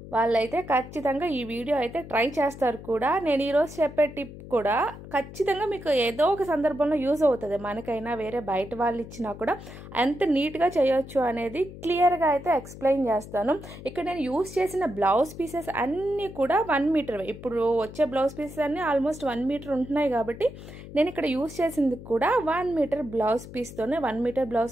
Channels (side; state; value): left; noise; hum, 14 dB below the sound